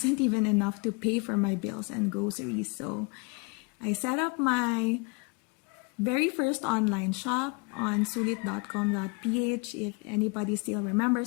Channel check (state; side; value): quieter; right; 30.5 dB